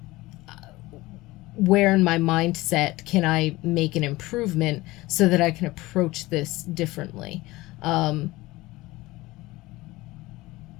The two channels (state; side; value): quieter; right; 19.7 dB